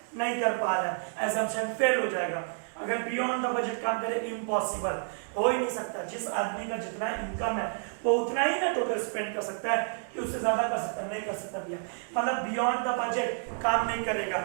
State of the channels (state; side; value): silent; left; 58 dB below the other